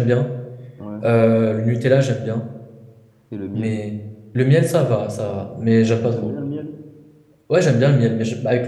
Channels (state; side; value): identical; both; correlation 1.00